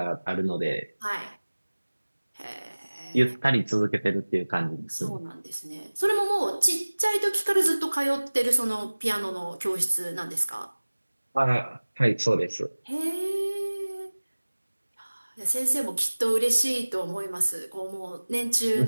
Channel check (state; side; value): inverted; both; correlation -1.00